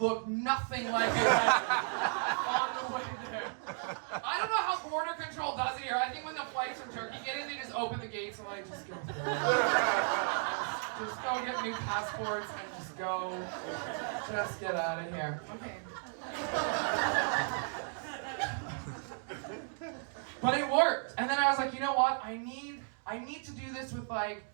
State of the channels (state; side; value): silent; left; 55 dB below the other